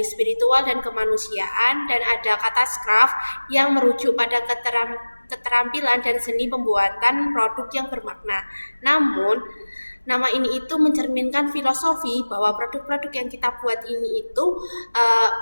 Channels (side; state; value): both; inverted; correlation -1.00